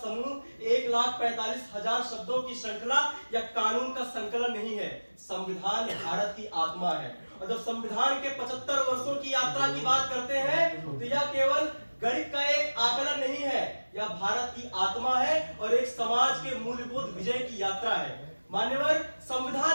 1,45,000 शब्दों की श्रृंखला या कानून का संकलन नहीं है। संविधान भारत की आत्मा है। और जब संविधान के 75 वर्षों की यात्रा की बात करते हैं तो यह केवल गणित का एक आकलन नहीं है, यह भारत की आत्मा है और एक समाज के मूल्यबोध विजय की यात्रा है। मान्यवर,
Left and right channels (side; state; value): both; inverted; correlation -1.00